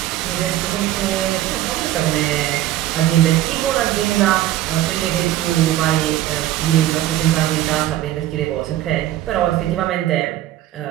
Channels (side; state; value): left; quieter; 13.7 dB